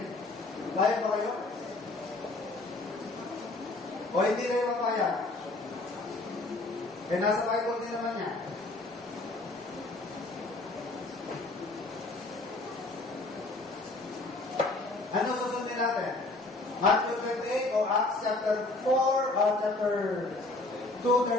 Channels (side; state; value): right; quieter; 3.0 dB